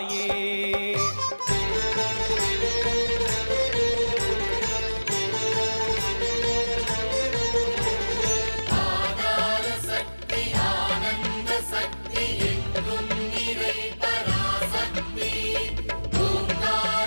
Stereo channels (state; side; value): inverted; both; correlation -1.00